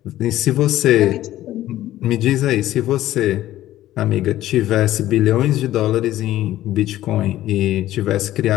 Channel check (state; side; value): quieter; right; 14.2 dB